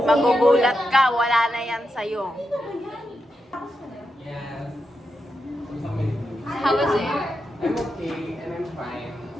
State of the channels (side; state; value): both; normal; correlation 0.87